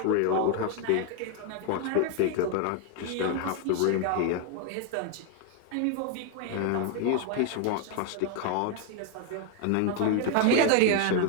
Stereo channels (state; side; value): different; both; correlation 0.01